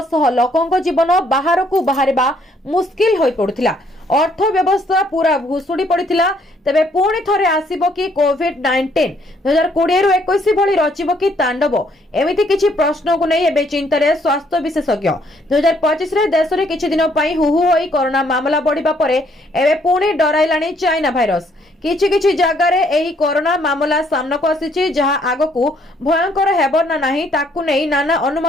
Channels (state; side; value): normal; both; correlation 0.67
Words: शह लोकंक जीवन बाहर को बाहरिबा मुश्किल होई पडुथिला अर्थव्यवस्था पूरा भुशुड़ी पड़ता तेबे पुणी थरे आसीबो कि कोविड-19 2020 रु 21 भली रचिबो कि तांडव एमिति किछि प्रश्न को नहीं एबे चिंतारे स्वास्थ्य विशेषज्ञ 2025 रे देश रे किछि दिन पई हुहु होई कोरोना मामला बढ़िबा परे एबे पुणी डराइलाणी चाइना भाइरस किछि किछि जागा रे एही कोरोना मामला सामना को आसीछि जहा आगकू भयंकर हेबो ना नाही ताकू नै नाना